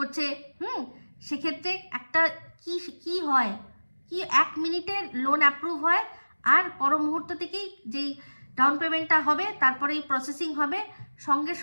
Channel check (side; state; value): both; inverted; correlation -1.00